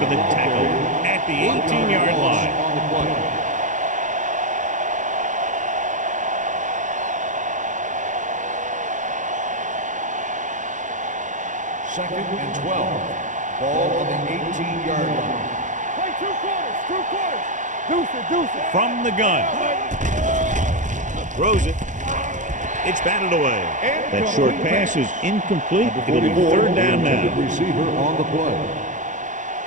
the tackle at the 18-yard line. On the play. Second and 12. Ball on the 18-yard line. Play 2 quarters, 2 quarters. Deuce it, deuce it. From the gun. Throws it. It's batted away. That short pass is incomplete. It'll be third down now. Receiver on the play.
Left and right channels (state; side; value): late; left; 0.36 ms